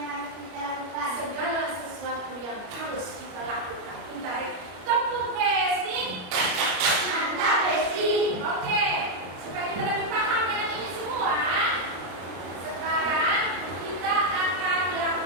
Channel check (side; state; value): left; late; 33 ms